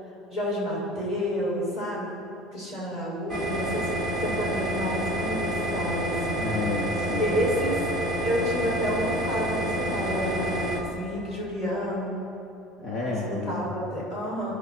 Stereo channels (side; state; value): both; normal; correlation 0.42